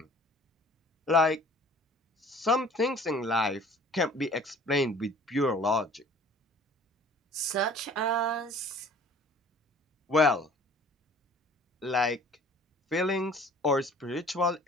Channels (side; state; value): both; normal; correlation 0.51